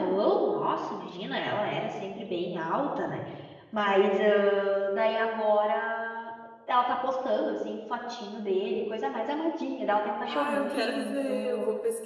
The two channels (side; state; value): both; identical; correlation 1.00